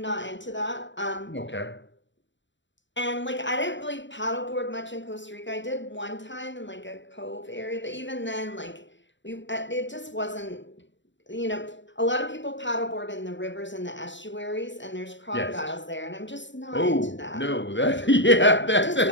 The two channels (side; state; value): right; late; 0.54 ms